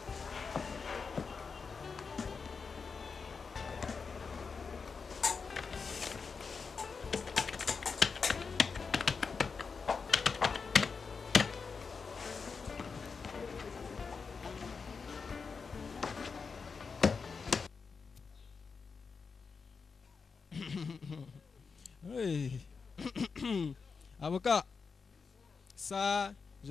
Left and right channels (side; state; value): right; quieter; 5.2 dB